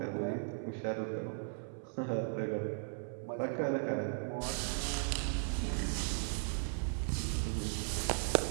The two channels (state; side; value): silent; left; 53 dB below the other